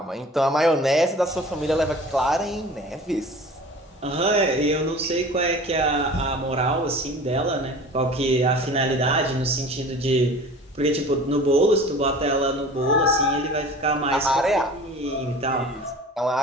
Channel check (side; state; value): both; normal; correlation 0.42